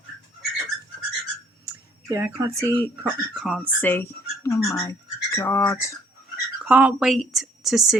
Yeah, I can't see. Can't see. Oh my god. Can't wait to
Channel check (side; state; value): both; normal; correlation 0.62